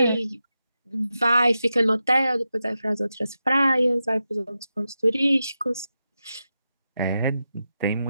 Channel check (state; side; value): inverted; both; correlation -0.90